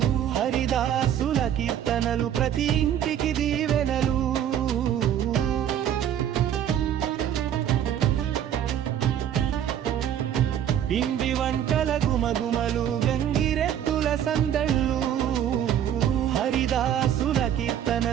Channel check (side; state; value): left; quieter; 10.1 dB